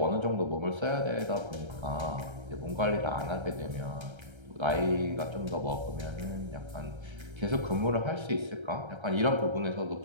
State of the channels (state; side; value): late; left; 1.3 ms